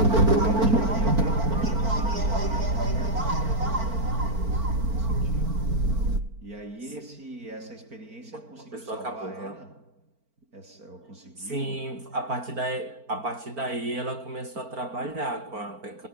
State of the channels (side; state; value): left; late; 4.4 ms